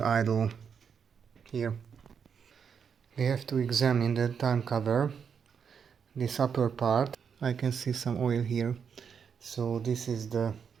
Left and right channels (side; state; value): left; quieter; 6.8 dB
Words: idle here. We have to examine the time cover, this upper part. I can see some oil here, so this is the